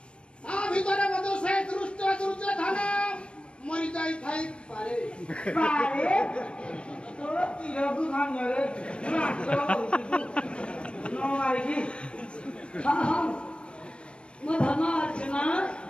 তা ভিতরে মধ্যে সে দুর্যোধন মরি যাই থাই পারে পারে তো তিরকু ভাঙরে না তো নো মারিকি हां हां मो धन अर्जुना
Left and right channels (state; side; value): late; right; 0.058 ms